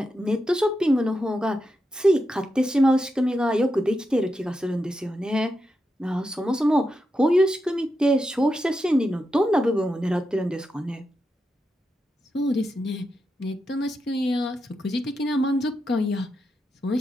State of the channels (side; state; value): both; normal; correlation 0.87